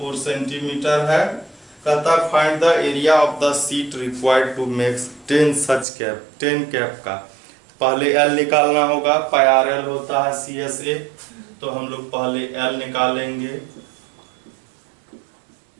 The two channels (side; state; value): left; drops out; at 5.9 s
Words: सेंटीमीटर है। कहता find the area of the sheet required to make 10 such cap, 10 cap का। पहले एल निकालना होगा, पाई आर एल होता है CSA, तो हम लोग पहले एल निकालेंगे,